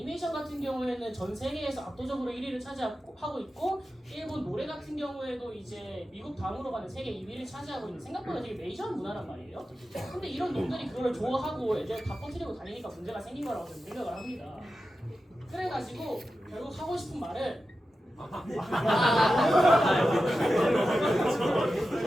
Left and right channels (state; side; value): normal; both; correlation 0.92